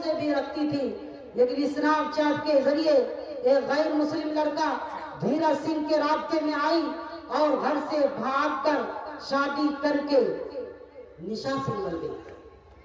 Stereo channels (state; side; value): identical; both; correlation 1.00